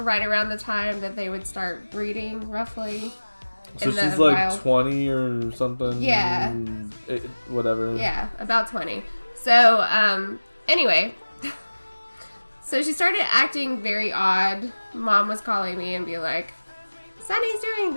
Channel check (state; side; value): inverted; both; correlation -1.00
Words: around the time that they would start breeding, roughly. So she's like 20 or something. Yeah. Whatever. Yeah, about 20. So anyway, so she started acting very odd. Mom was calling me and be like, Sonny's doing